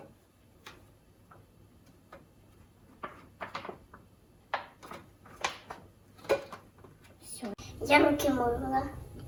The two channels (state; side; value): identical; both; correlation 1.00